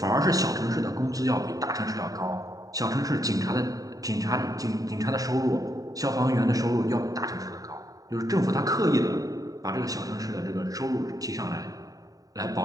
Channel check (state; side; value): late; left; 0.18 ms